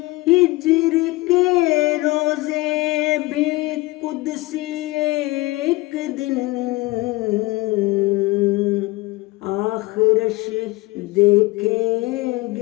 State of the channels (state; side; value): quieter; right; 20.9 dB